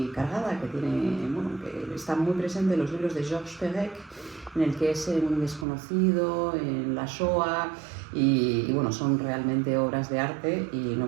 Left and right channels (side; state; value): left; drops out; at 5.7 s